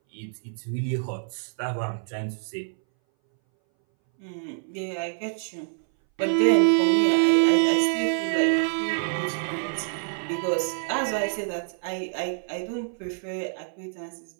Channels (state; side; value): silent; left; 60 dB below the other